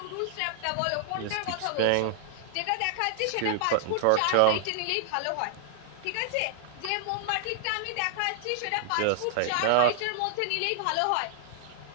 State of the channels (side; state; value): both; different; correlation -0.01